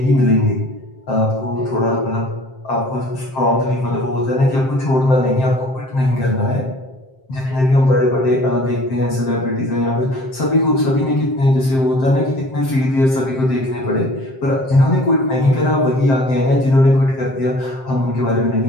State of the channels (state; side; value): late; right; 7.6 ms